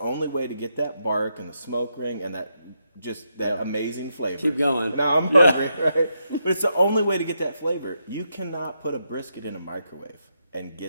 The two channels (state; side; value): inverted; both; correlation -0.82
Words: way to get that bark and the smoke ring and that amazing flavor. Keep going. Now I'm hungry, right? But it's the only way to get that flavor. You cannot put a brisket in a microwave and